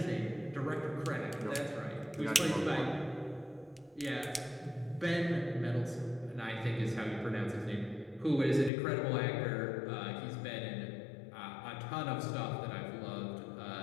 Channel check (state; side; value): drops out; right; at 8.7 s